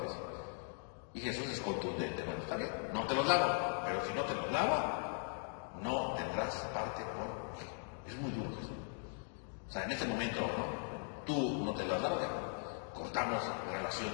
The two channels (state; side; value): silent; right; 51 dB below the other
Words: Y Jesús es contundente. Bueno, está bien, no te los lavo, pero si no te los lavo, no tendrás parte conmigo. Es muy duro, Jesús. O sea, en este momento, ¿no? Tú no te los lavas, ya cortamos relación